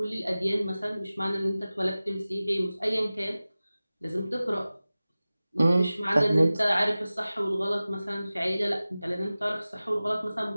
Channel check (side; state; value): both; inverted; correlation -0.97